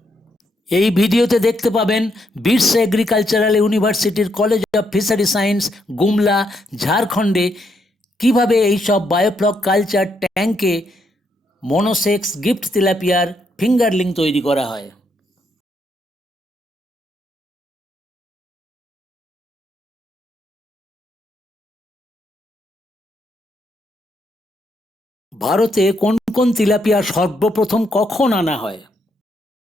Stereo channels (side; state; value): both; normal; correlation 0.77